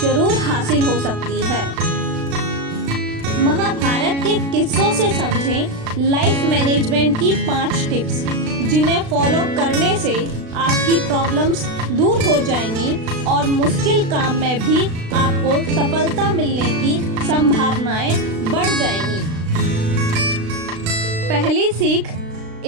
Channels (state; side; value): late; left; 36 ms